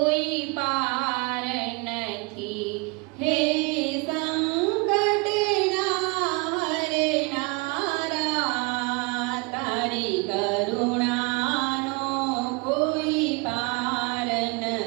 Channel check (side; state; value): left; quieter; 28.3 dB